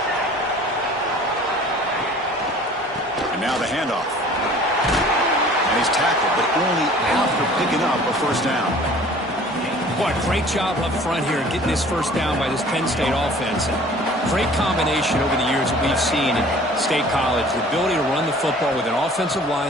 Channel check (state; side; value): normal; both; correlation 0.49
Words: And now the handoff. And he's tackled, but only after picking up a first down. What a great job up front here getting this first down by this Penn State offense. And great combination over the years that we've seen in State College. The ability to run the football with an offensive